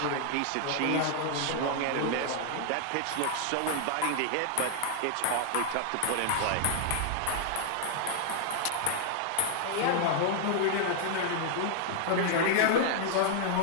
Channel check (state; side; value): different; both; correlation 0.00